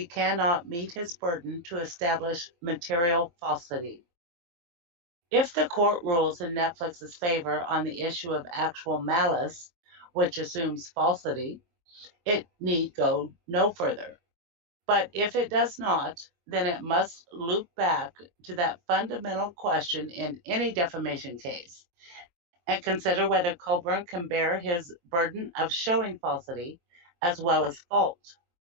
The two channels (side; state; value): left; late; 23 ms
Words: cannot meet his burden to establish material falsity. If the court rules in Netflix's favor on the issue of actual malice, which assumes falsity, it need go no further. But if it does not, then it must loop back to that fundamental question in any defamation case and consider whether Colborn can bear his burden of showing falsity as well as fault.